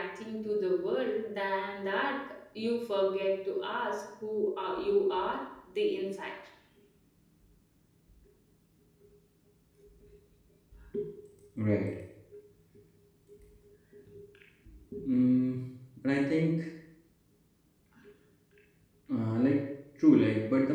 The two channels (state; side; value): identical; both; correlation 1.00